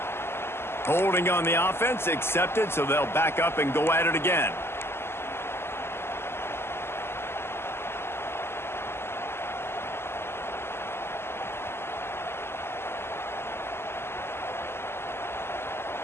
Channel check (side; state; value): right; late; 0.12 ms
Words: Holding on the offense, accepted, so they'll back up and go at it again.